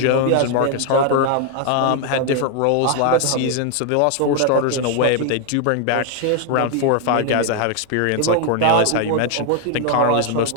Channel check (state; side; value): different; both; correlation 0.00